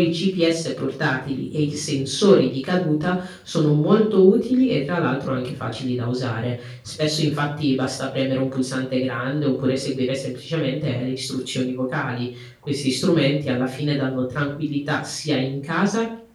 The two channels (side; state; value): both; identical; correlation 1.00